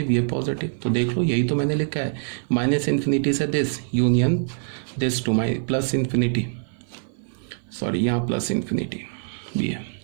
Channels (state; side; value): silent; left; 56 dB below the other